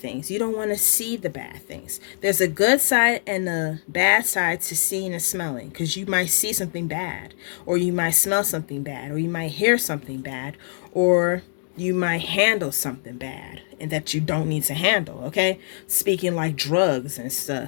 You don't want to see the bad things. There's a good side and a bad side to seeing and smelling, because you might see something bad, or you might smell something bad, or you might hear something bad, or you might handle something bad and that you don't need to handle. Okay, speaking like drugs and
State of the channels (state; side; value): silent; right; digital silence